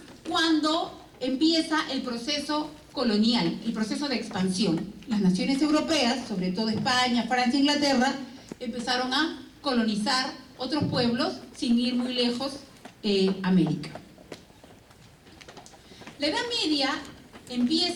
cuando empieza el proceso colonial, el proceso de expansión. Las naciones europeas, sobre todo España, Francia, Inglaterra, empezaron a colonizar otros pueblos sin ir muy lejos, América. La Edad Media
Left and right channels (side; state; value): both; identical; correlation 1.00